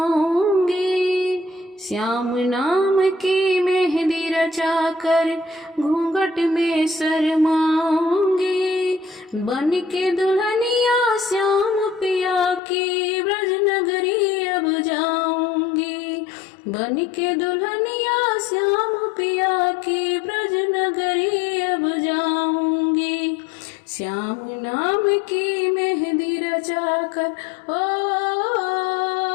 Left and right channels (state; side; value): drops out; right; at 12.6 s